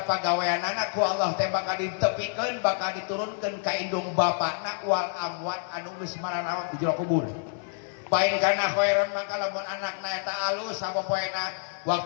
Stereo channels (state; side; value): silent; right; 59 dB below the other